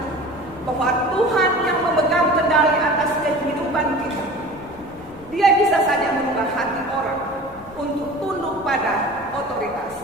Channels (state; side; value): noise; left; rumble, 23 dB below the sound